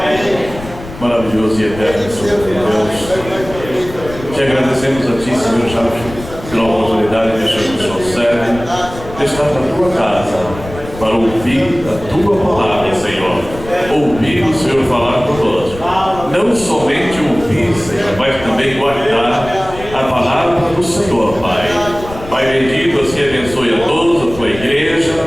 Maravilhoso e eterno Senhor Deus. Te agradecemos a Ti, Senhor, já pela oportunidade que o Senhor nos serve de estar na Tua casa para ouvir a Tua palavra, Senhor. Ouvir o Senhor falar conosco. Não somente ouvir, Senhor, mas também guardar a palavra do Senhor, Pai. Pai bendito, assim abençoe a todos, a Tua igreja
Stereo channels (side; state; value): left; noise; rumble, 14 dB below the sound